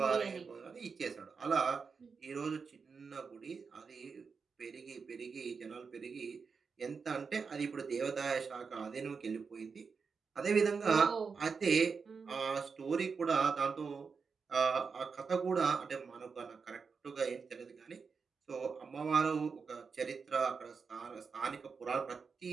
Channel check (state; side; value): quieter; left; 5.3 dB